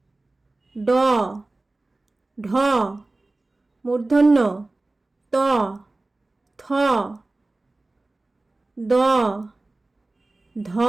ড, ঢ, মূর্ধন্য ত, থ, দ, ধ,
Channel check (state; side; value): quieter; left; 3.0 dB